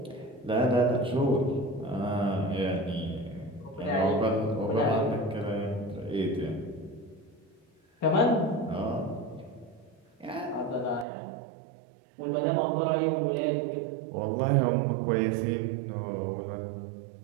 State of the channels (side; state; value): left; drops out; at 11.1 s